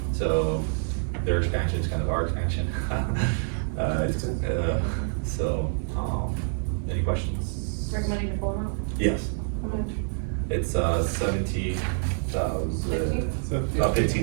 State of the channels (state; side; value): silent; left; 60 dB below the other